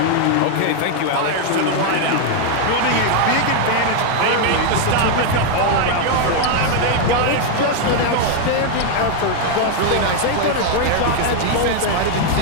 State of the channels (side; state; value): both; different; correlation 0.01